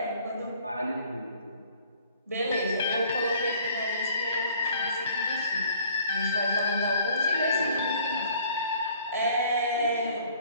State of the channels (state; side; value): inverted; both; correlation -0.56